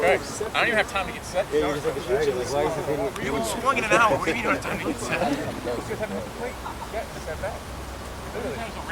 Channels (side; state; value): both; identical; correlation 1.00